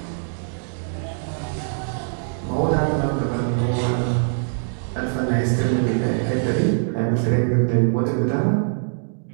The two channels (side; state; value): left; silent; digital silence